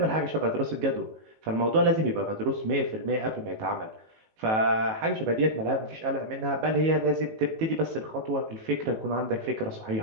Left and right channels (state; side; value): late; left; 18 ms